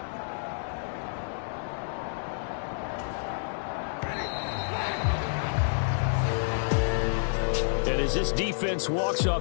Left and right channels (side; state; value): right; silent; digital silence